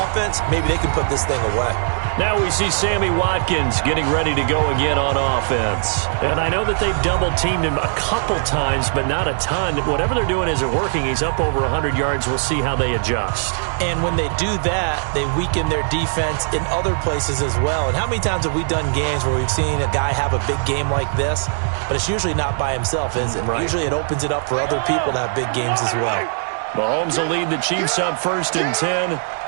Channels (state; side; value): silent; left; digital silence